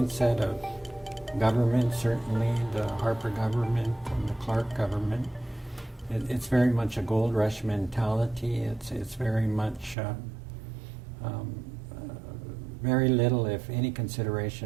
of government, certainly the Harper government and the Clark government, it's very much a gold rush mentality. It's very much very little, if any,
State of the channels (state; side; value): drops out; left; at 10.0 s